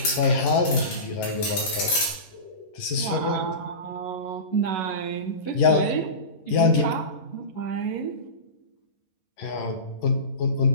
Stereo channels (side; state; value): right; late; 11 ms